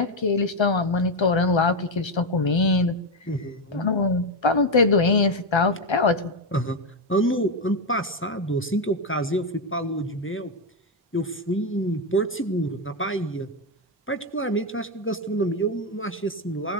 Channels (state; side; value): normal; both; correlation 0.07